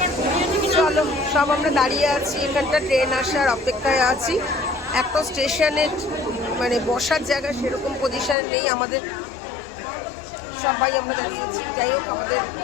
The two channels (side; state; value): right; drops out; at 8.3 s